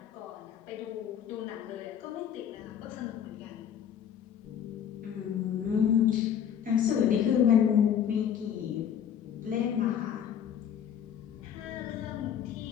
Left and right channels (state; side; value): quieter; right; 8.9 dB